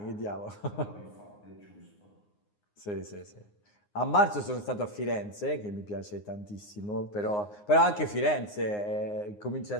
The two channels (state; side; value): late; right; 9.7 ms